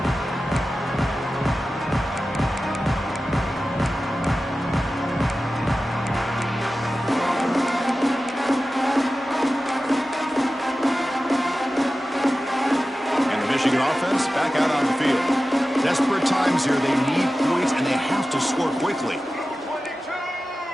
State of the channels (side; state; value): both; normal; correlation 0.94